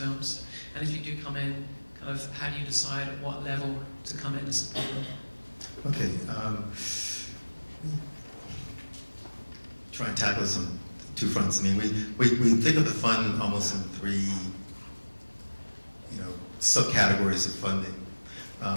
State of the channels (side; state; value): both; inverted; correlation -1.00